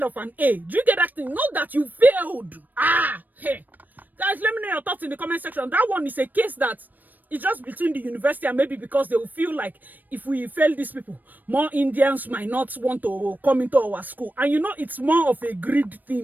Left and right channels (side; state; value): left; late; 0.087 ms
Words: of an A. Do you get that thing? Not that you failed. Hey. Guys, let me know your thoughts in the comment section. That one is a case that it's just between the university and maybe because they will feel like if we fail these people, more Indians might not want to come into our school. And you know, it's more of a greed